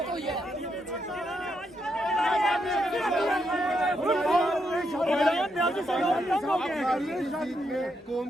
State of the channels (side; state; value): both; normal; correlation 0.80